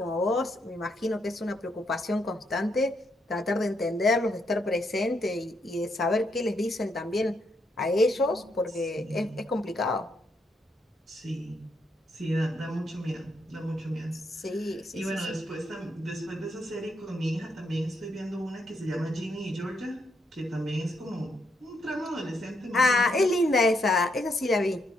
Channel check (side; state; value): both; normal; correlation 0.77